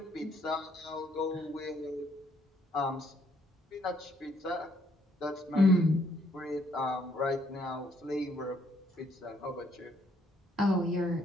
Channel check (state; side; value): normal; both; correlation 0.68